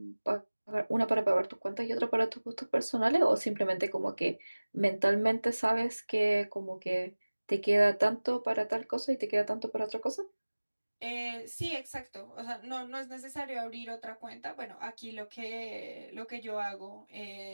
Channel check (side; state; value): both; inverted; correlation -1.00